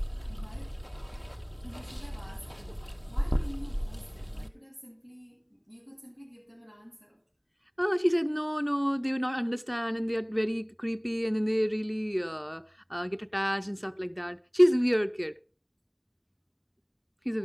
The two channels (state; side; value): identical; both; correlation 1.00